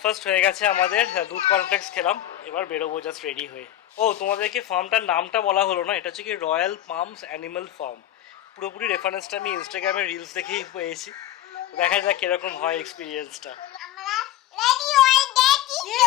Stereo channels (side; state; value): right; quieter; 12.8 dB